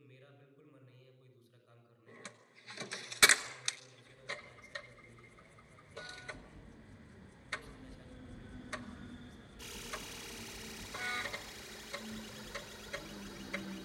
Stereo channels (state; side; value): identical; both; correlation 1.00